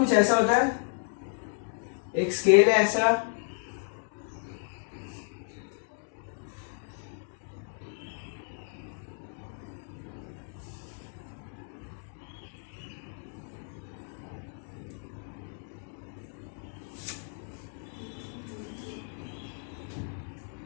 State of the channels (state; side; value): silent; right; 56 dB below the other